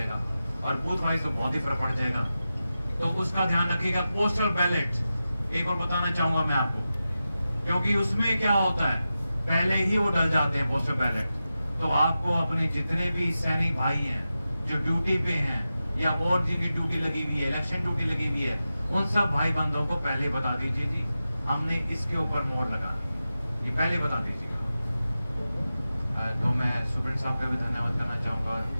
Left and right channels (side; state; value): both; inverted; correlation -0.92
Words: और बूथ वाइज तो बहुत ही फर्क पड़ जाएगा। तो उसका ध्यान रखिएगा। पोस्टल बैलेट एक और बताना चाहूंगा मैं आपको, क्योंकि उसमें क्या होता है, पहले ही वो डल जाते हैं पोस्टल बैलेट। तो आपको अपने जितने भी सैनिक भाई हैं जो ड्यूटी पे हैं या और जिनकी ड्यूटी लगी हुई है, इलेक्शन ड्यूटी लगी हुई है, उन सब भाई बंधुओं को पहले बता दीजिए जी हमने इसके ऊपर मोहर लगानी, ये पहले बता दीजिए। तो मैं सुप्रीम साहब का भी धन्यवाद करना चाहूंगा